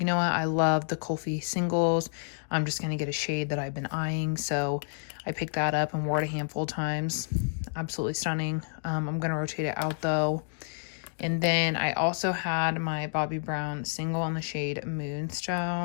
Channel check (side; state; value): right; silent; digital silence